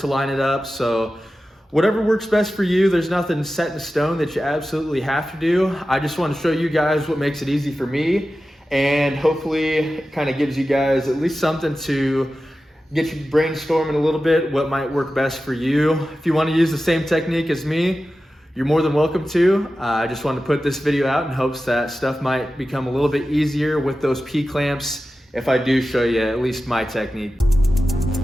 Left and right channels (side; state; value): both; normal; correlation 0.94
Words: line it up, so whatever works best for you. There's nothing set in stone that you absolutely have to do. I just want to show you guys what makes it easy for me, and hopefully it kind of gives you guys at least something to get you brainstorming a little bit what might work best for you. If you want to use the same technique as me, you're more than welcome to. I just wanted to put this video out in hopes that stuff might become a little bit easier with those P-clamps if I do show you at least my technique.